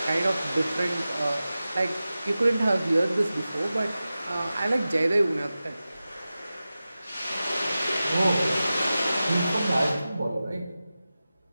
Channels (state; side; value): inverted; both; correlation -0.95